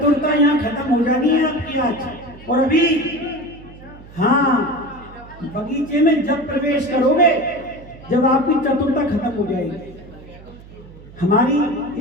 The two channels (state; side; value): noise; right; hum, 20 dB below the sound